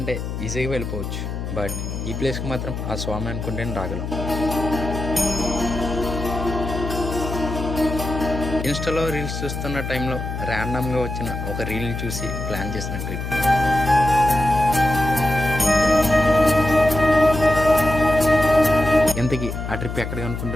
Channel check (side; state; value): left; noise; hum, 5 dB below the sound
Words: ఈజీగా వెళ్ళిపోవచ్చు. బట్ ఈ ప్లేస్కి మాత్రం ఆ స్వామి అనుకుంటేనే రాగలం. ఇన్స్టాలో రీల్స్ చూస్తున్న టైంలో ర్యాండమ్గా వచ్చిన ఒక రీల్ని చూసి ప్లాన్ చేసిన ట్రిప్. ఇంతకీ ఆ ట్రిప్ ఎక్కడికి